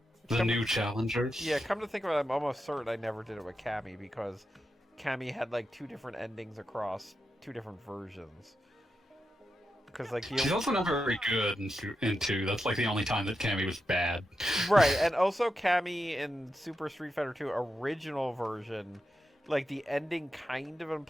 The new challengers. Yeah, come to think of it, I'm almost certain I never did it with Cammy because Cammy had like 2 different endings across 2 different versions. Because like She's also not very good in 2. That's like the only time that Cammy was bad. Right, and also Cammy in Super Street Fighter 2 original version, like the ending kind of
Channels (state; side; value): normal; both; correlation 0.88